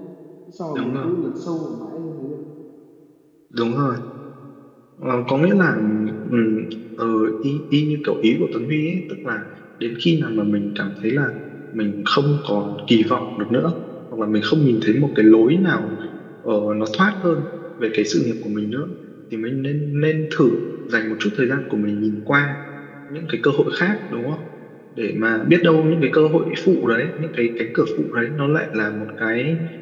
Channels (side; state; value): both; identical; correlation 1.00